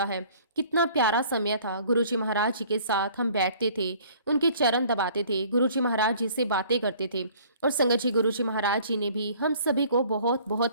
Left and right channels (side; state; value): both; inverted; correlation -0.54